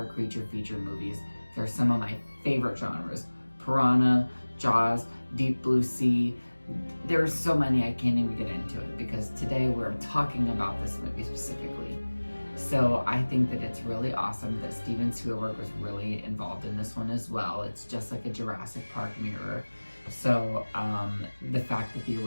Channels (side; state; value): both; inverted; correlation -1.00